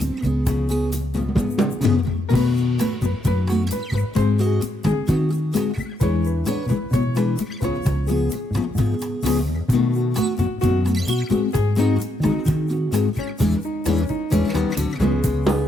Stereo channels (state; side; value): normal; both; correlation 0.80